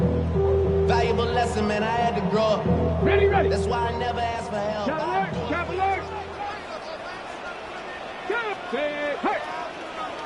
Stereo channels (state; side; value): identical; both; correlation 1.00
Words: Valuable lesson, man. I had to grow up. Ready, ready. That's why I never asked for help. Chop alert.